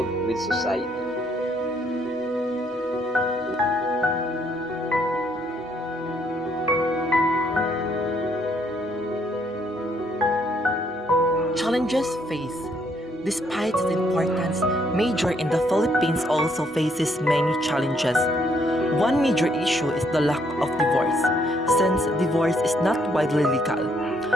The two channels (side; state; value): both; normal; correlation 0.70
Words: with society. Challenges faced. Despite its importance, marriage in the Philippines also faces many challenges. One major issue is the lack of divorce. Since divorce is not widely legal,